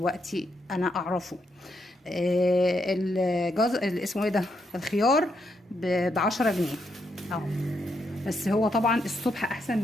انا اعرفه. اسمه ايه ده، الخيار ب10 جنيه اهو. بس هو طبعا الصبح احسن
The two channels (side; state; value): both; normal; correlation 0.79